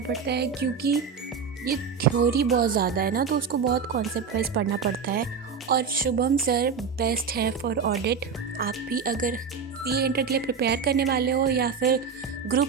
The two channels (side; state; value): left; quieter; 6.0 dB